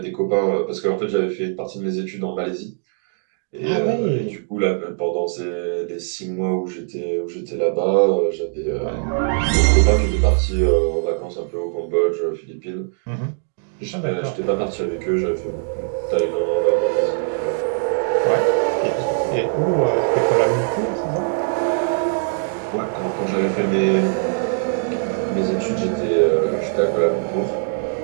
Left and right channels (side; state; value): left; silent; digital silence